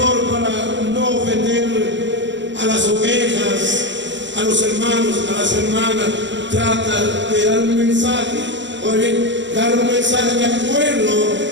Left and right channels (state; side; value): late; left; 0.53 ms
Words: para no ofender a las ovejas, a los hermanos, a las hermanas, trata de dar un mensaje, o bien dar un mensaje de acuerdo